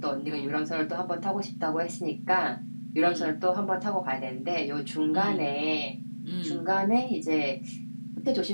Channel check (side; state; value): both; inverted; correlation -1.00